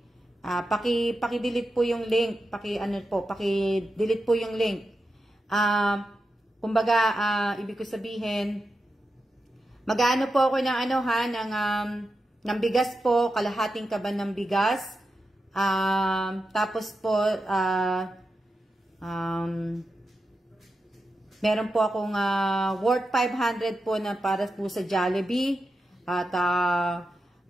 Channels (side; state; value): both; normal; correlation 0.89